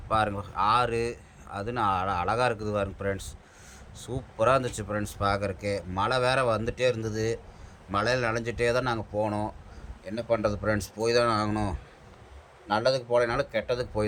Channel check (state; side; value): identical; both; correlation 1.00